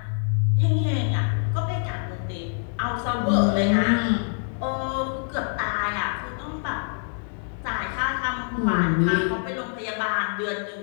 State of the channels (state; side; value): silent; right; 56 dB below the other